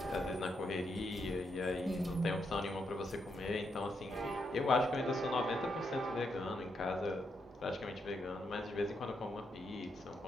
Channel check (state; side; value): normal; both; correlation 0.80